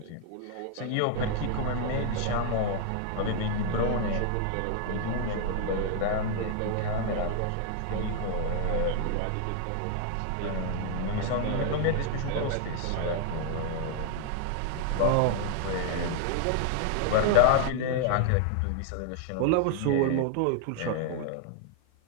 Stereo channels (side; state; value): both; different; correlation 0.00